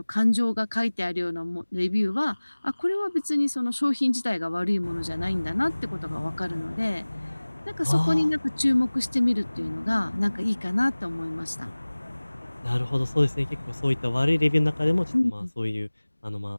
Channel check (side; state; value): both; inverted; correlation -1.00